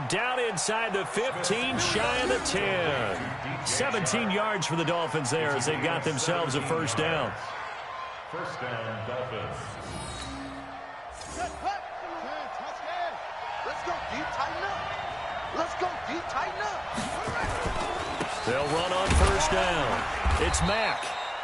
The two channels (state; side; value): identical; both; correlation 1.00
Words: down inside the 15, shy of the 10. 17 yards for the Dolphins there as they've got themselves a first down. First down, Dolphins. Let's go deep, tighten up. Let's go deep, tighten up. They'll run on first down. It's Mack.